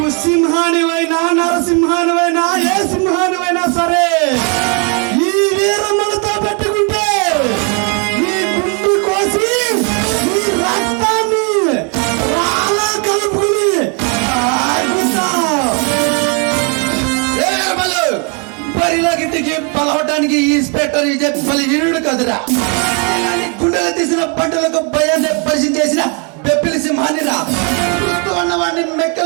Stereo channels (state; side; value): quieter; left; 36.2 dB